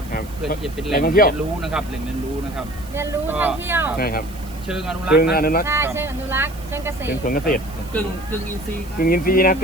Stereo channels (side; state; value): right; noise; hiss, 21 dB below the sound